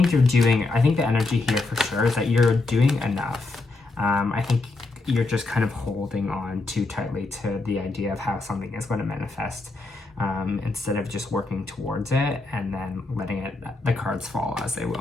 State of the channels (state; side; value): quieter; right; 3.3 dB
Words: the energy here for sure is that you're doing enough. I think you're just kind of holding on too tightly to the idea of how something is going to manifest, instead of just working towards it and then letting the cards fall as they